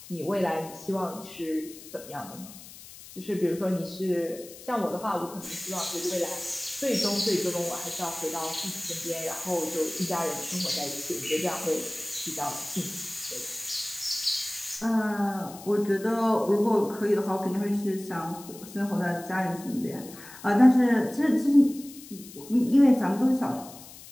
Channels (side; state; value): left; noise; hiss, 17 dB below the sound